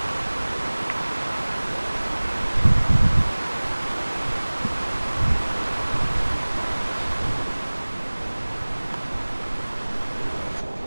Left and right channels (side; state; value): both; inverted; correlation -1.00